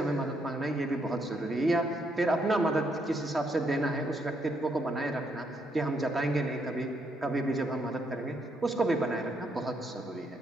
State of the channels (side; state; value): both; normal; correlation 0.75